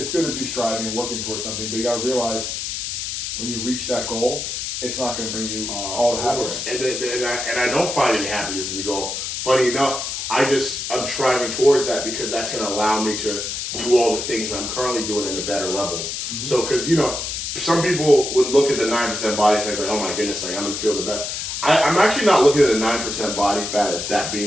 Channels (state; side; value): noise; left; hiss, 4 dB below the sound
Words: good to be striving and working towards something, but you got to realize when you reach that goal, it's not going to bring you all the happiness. And I don't find any happiness in the goal. Funny enough, I'm striving towards that because that's going to allow me to do all the things I'm currently doing at a better level. Mm-hmm. So, because some people would look at the 9% body fat like, oh my goodness, like I'm gonna feel the best. I'm actually not looking at the 9% body fat as that